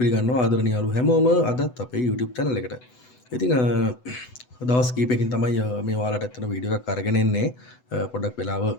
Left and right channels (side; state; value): right; late; 8.0 ms